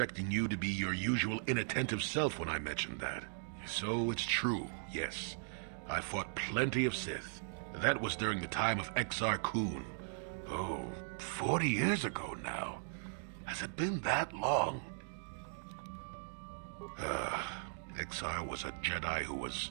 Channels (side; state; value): left; silent; digital silence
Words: you to be your usual inattentive self when I mentioned that. So it's true, yes. I fought plenty of Sith. That was during the time of Exar Kun. Oh, 40 years ago now. Has it been that long? Exar was a Jedi who